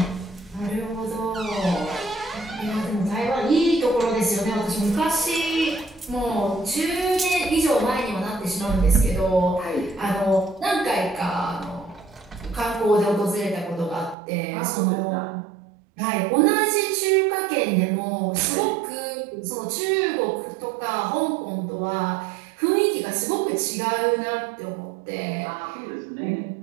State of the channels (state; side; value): drops out; left; at 14.2 s